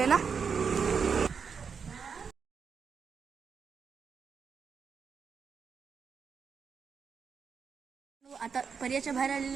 ना. आता पर्याच्या बाहेर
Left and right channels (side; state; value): left; quieter; 6.1 dB